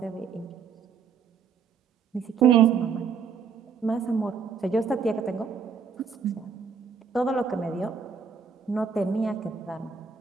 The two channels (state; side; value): quieter; left; 6.0 dB